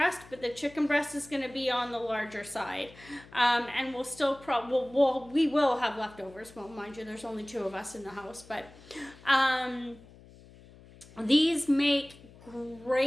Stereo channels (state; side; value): noise; left; hum, 22 dB below the sound